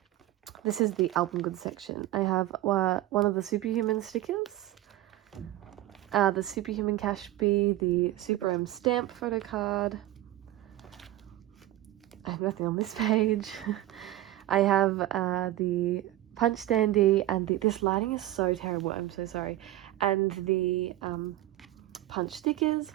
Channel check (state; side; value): quieter; left; 15.0 dB